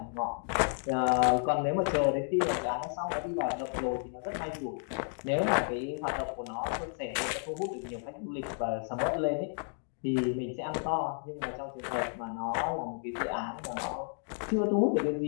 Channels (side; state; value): right; silent; 56 dB below the other